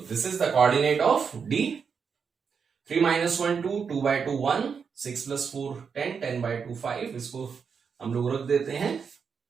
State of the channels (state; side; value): quieter; left; 6.2 dB